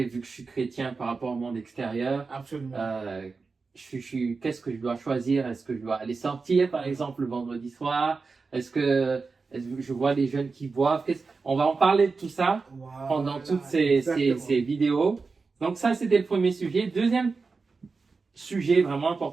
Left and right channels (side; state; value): left; quieter; 4.4 dB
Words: vu que je suis chrétien par rapport au monde extérieur. Absolument. Qu'est-ce que je dois choisir? Est-ce que je dois aller sortir par exemple le vendredi soir? Est-ce que je vois les jeunes qui boivent? On va en parler de tout ça pendant toutes ces vidéos. Donc ça c'était le premier sujet. Deuxième sujet vraiment